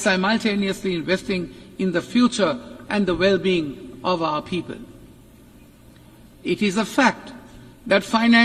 investing in the future and the well-being of our people. It is a fact that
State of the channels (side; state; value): both; identical; correlation 1.00